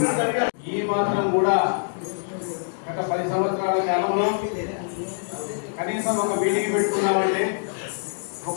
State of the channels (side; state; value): right; silent; digital silence